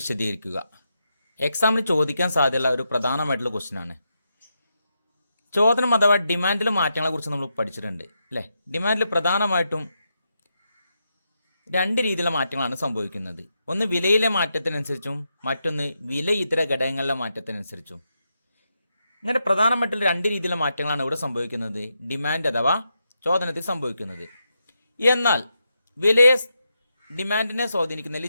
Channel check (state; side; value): inverted; both; correlation -0.84